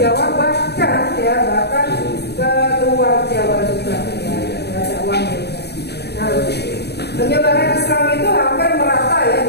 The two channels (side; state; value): right; late; 0.48 ms